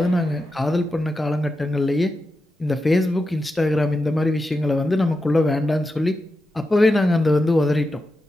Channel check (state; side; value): normal; both; correlation 0.89